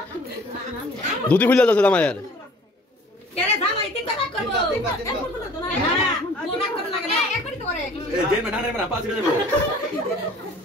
দুধি খুলে যাচ্ছে জামাইয়ের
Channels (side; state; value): both; normal; correlation 0.50